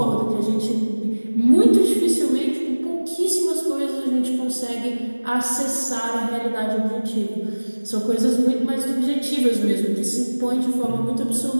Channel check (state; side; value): inverted; both; correlation -1.00